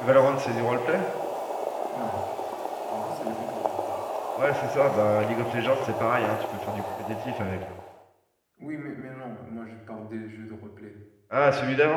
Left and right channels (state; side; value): identical; both; correlation 1.00